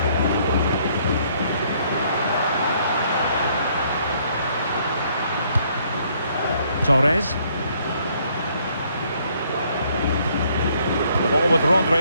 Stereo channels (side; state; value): both; inverted; correlation -0.66